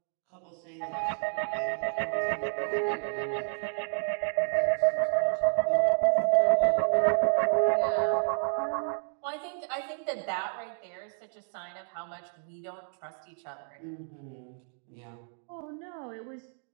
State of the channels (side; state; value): left; silent; 58 dB below the other